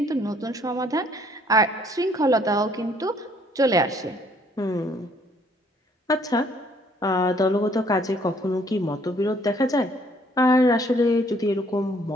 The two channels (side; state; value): both; normal; correlation 0.63